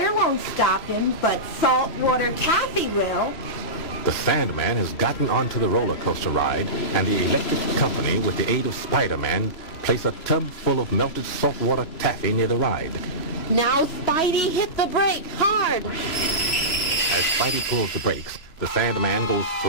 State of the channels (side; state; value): right; late; 3.1 ms